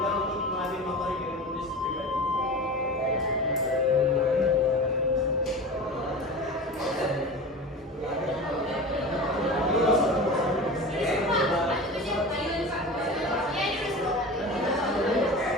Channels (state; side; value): normal; both; correlation 0.32